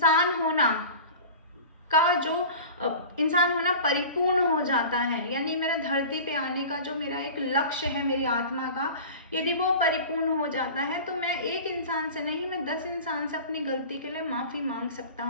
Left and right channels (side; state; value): both; inverted; correlation -0.37